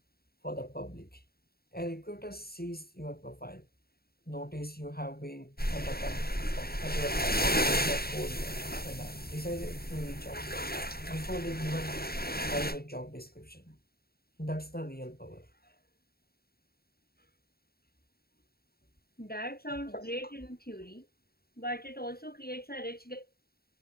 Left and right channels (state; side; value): late; right; 0.45 ms